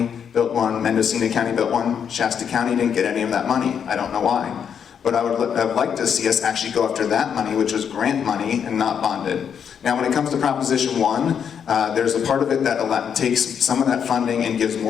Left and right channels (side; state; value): right; quieter; 7.7 dB